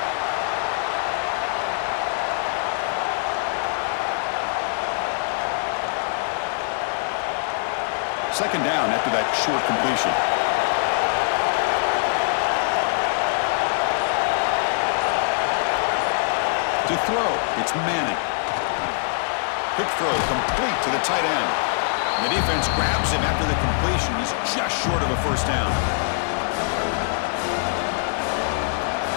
Second down after that short completion. To throw, it's Manning. Quick throw, complete to the tight end. And the defense grabs him after the completion. He's just short of a 1st down.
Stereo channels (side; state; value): right; silent; digital silence